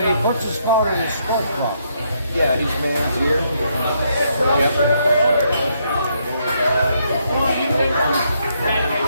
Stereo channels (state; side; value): inverted; both; correlation -0.74